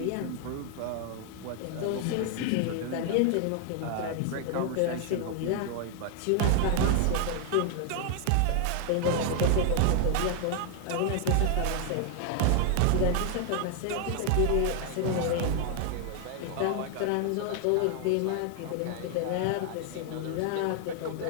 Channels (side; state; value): both; different; correlation 0.00